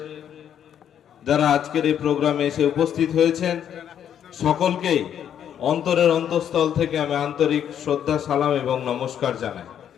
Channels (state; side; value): quieter; right; 9.4 dB